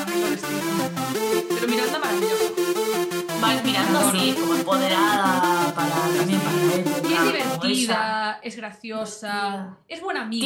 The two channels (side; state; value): both; identical; correlation 1.00